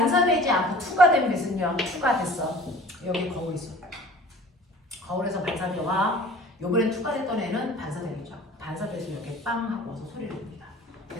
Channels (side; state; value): both; normal; correlation 0.46